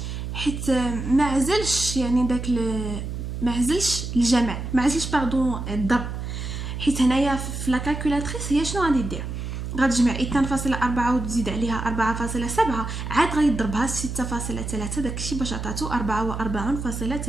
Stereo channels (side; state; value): right; noise; hum, 5 dB below the sound